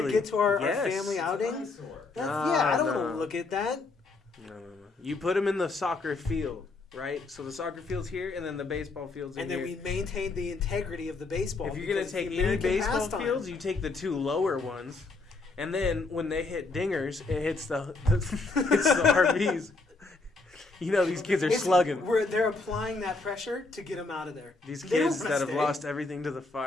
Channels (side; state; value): right; quieter; 3.6 dB